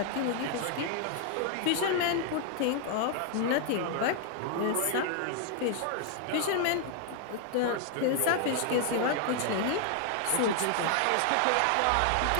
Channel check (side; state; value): both; different; correlation 0.00